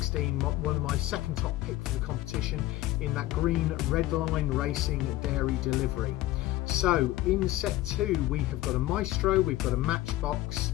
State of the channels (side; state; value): right; quieter; 16.4 dB